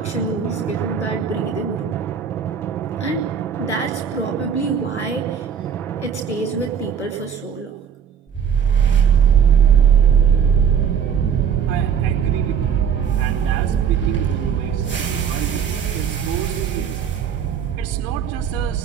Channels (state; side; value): quieter; left; 7.6 dB